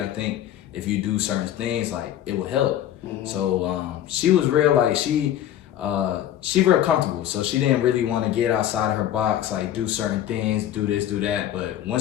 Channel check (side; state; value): right; quieter; 11.6 dB